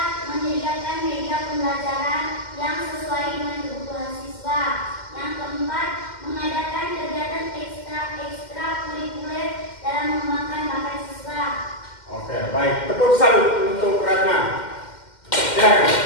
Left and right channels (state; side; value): late; right; 2.1 ms